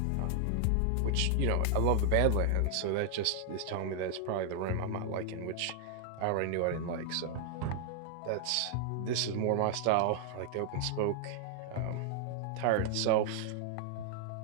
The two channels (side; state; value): both; different; correlation 0.00